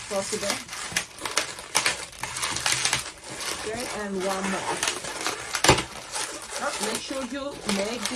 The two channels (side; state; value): both; identical; correlation 1.00